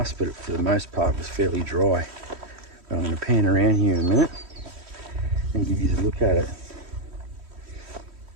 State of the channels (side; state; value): left; late; 3.1 ms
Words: but for the most part it was fairly dry. I'm going to pan around here in a minute and give you a look at it.